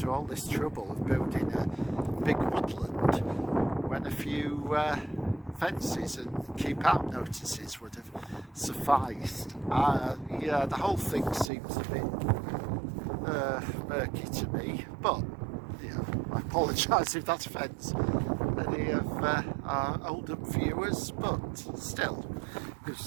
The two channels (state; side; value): drops out; left; at 11.5 s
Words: all this trouble of building a big woodland when a few fences and keep out notices would have sufficed? Yeah, the whole thing seems a bit murky to me, but I apologise if that offends any of our Oldham viewers, but still,